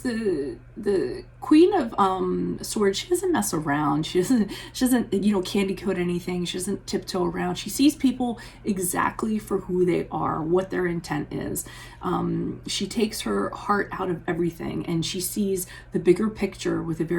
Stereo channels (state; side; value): identical; both; correlation 1.00